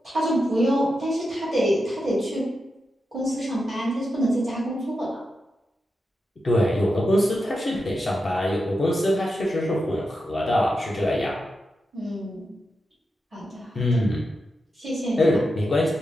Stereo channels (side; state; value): both; normal; correlation 0.88